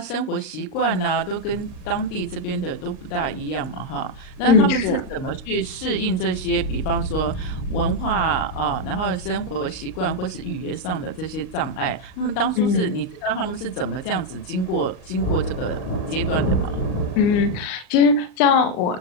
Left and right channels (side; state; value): right; late; 38 ms